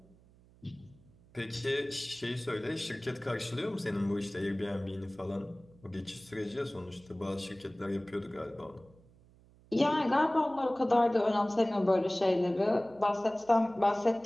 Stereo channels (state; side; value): noise; right; hum, 27 dB below the sound